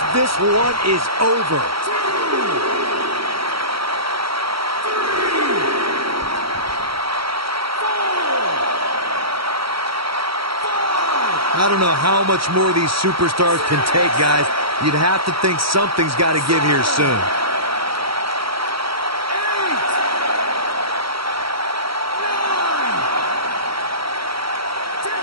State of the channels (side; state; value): left; late; 0.75 ms